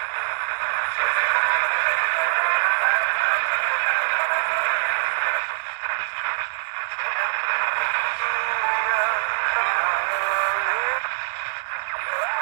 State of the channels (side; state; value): left; silent; digital silence